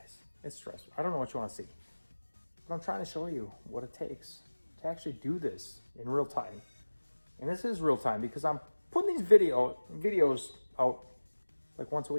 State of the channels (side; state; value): both; inverted; correlation -1.00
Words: It's stressful. I don't know what you want to see, but I'm trying to show you what it takes to actually do this in real time. And this is real time because I'm putting these videos out like once a